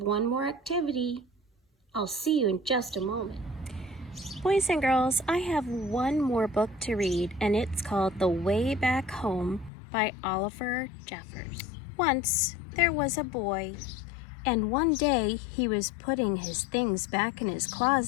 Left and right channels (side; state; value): right; drops out; at 9.7 s